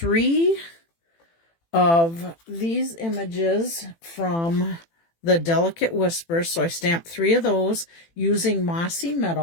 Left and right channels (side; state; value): right; late; 18 ms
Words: of these images from the Delicate Whisper. So I stamped 3 of those using mossy